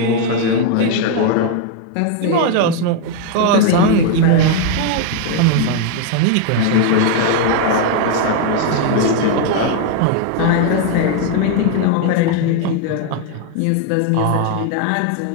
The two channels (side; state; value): both; different; correlation 0.00